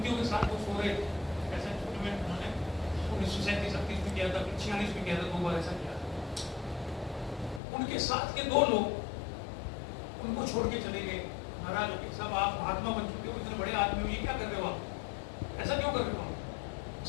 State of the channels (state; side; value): drops out; right; at 7.6 s